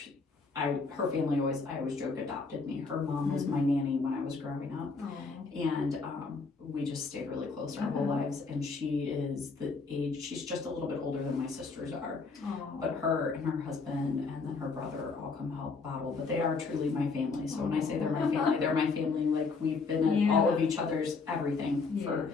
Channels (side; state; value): right; quieter; 4.4 dB